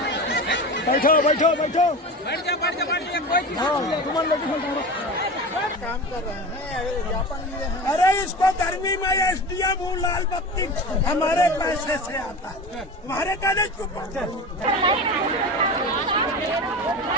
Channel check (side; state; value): both; normal; correlation 0.29